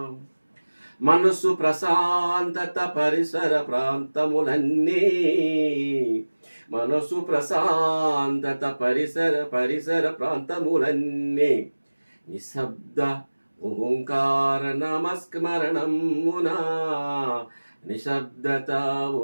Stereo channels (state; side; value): inverted; both; correlation -1.00